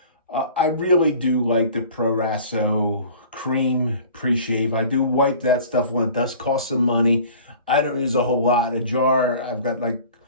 I really do like the Proasso cream pre-shave. I do wipe that stuff when it does cost some money. I don't use a whole lot. A jar, I've got like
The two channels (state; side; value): inverted; both; correlation -0.45